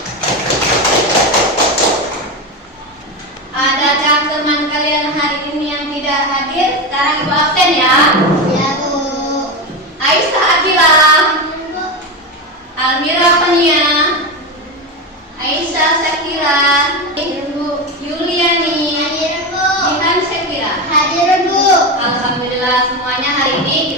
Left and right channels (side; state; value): both; normal; correlation 0.16